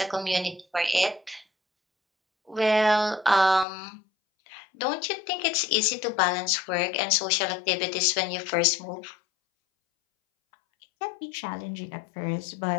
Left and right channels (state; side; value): drops out; right; at 3.7 s